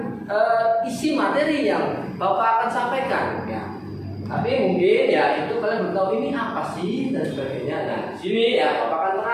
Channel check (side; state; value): both; identical; correlation 1.00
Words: isi materi yang Bapak akan sampaikan ya. Tapi mungkin ya itu kalian belum tahu ini apa sih dan sebagainya. Nah, di sini ya Bapak akan